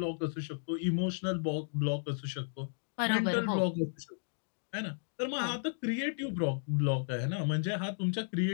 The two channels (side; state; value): right; silent; digital silence